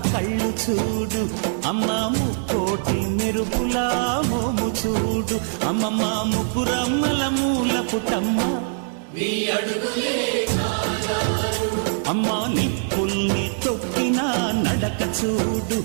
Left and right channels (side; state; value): left; silent; digital silence